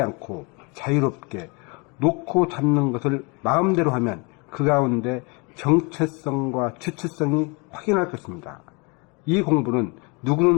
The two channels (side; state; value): right; quieter; 30.4 dB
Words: 않고 자유롭게 놓고 잡는 것을 마음대로 하면 그 가운데 정체성과 주체성이 확인할 것입니다. 이 공부는